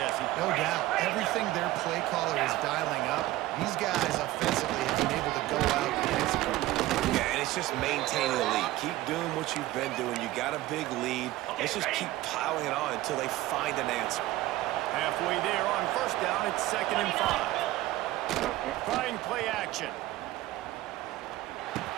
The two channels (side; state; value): left; quieter; 16.6 dB